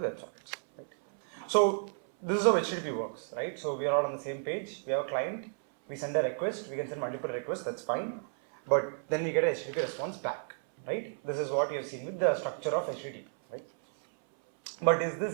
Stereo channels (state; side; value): silent; left; 56 dB below the other